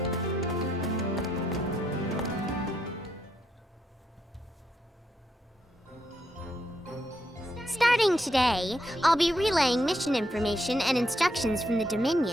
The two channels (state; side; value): normal; both; correlation 0.79